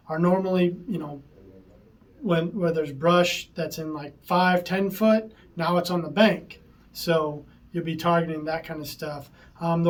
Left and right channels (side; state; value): both; identical; correlation 1.00